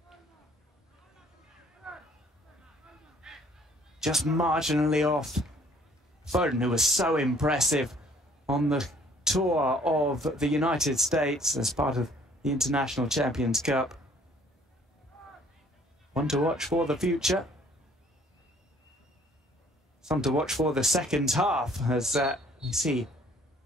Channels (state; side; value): normal; both; correlation 0.58